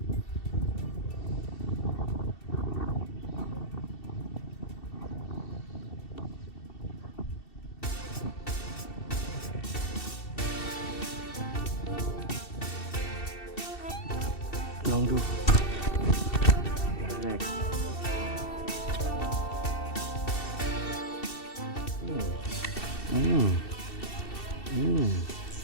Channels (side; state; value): right; late; 2.7 ms